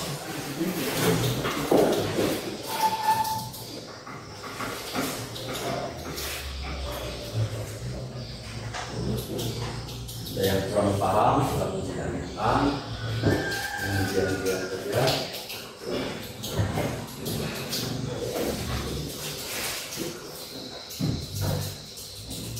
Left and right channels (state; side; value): identical; both; correlation 1.00